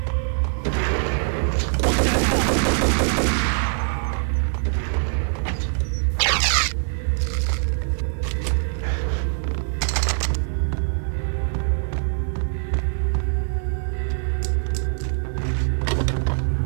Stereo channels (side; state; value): left; silent; digital silence